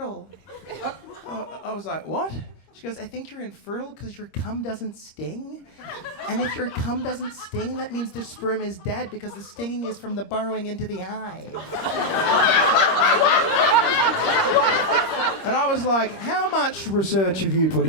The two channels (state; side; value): late; right; 26 ms